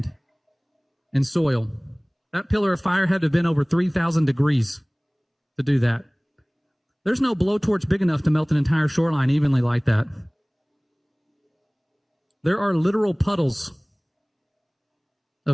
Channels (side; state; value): both; identical; correlation 1.00